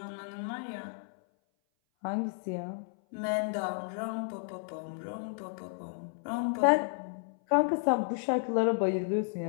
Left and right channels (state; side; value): silent; right; 56 dB below the other